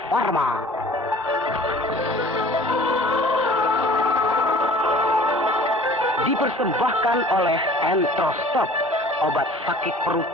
Pharma. Dipersembahkan oleh Entrostop, obat sakit perut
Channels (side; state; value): both; normal; correlation 0.48